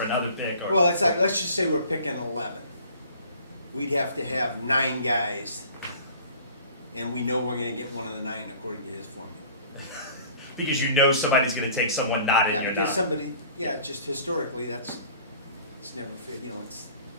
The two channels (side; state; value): both; inverted; correlation -0.48